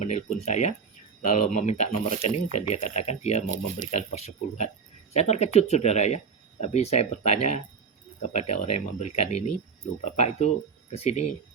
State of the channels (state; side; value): quieter; left; 5.8 dB